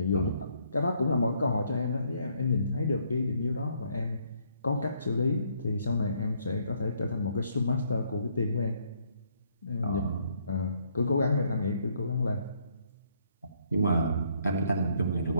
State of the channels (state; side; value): inverted; both; correlation -0.69